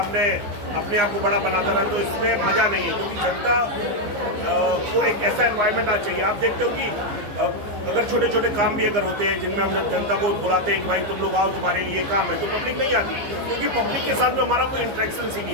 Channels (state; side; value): late; left; 15 ms